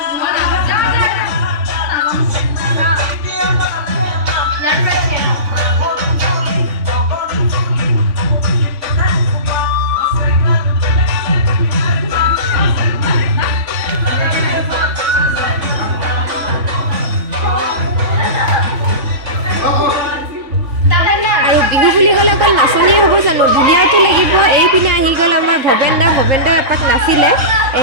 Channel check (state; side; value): late; left; 3.5 ms